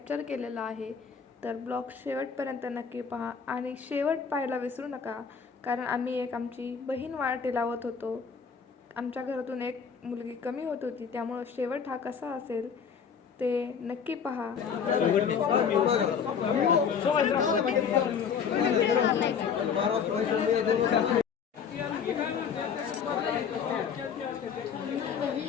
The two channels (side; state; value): right; quieter; 6.7 dB